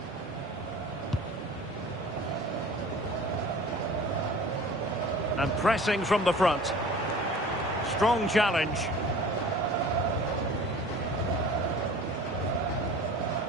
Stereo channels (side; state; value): both; normal; correlation 0.43